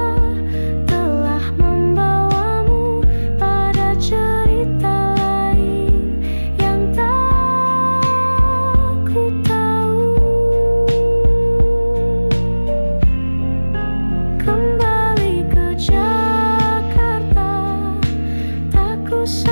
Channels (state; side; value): inverted; both; correlation -1.00